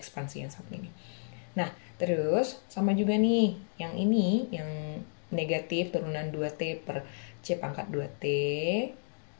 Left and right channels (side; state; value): right; silent; digital silence